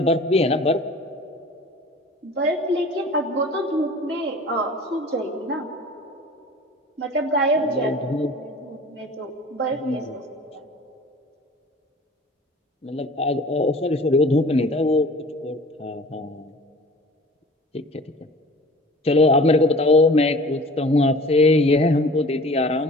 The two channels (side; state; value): both; normal; correlation 0.44